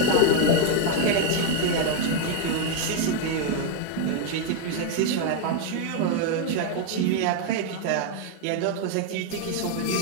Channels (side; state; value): both; different; correlation 0.01